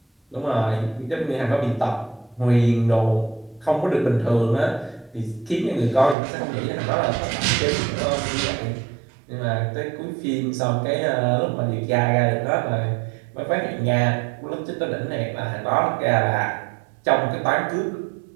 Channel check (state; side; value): drops out; left; at 6.2 s